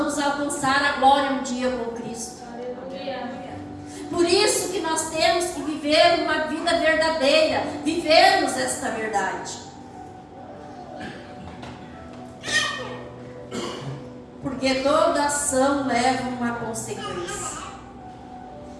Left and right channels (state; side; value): identical; both; correlation 1.00